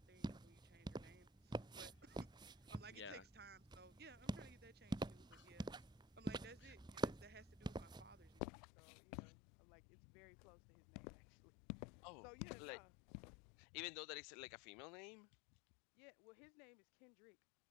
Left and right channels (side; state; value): right; drops out; at 8.5 s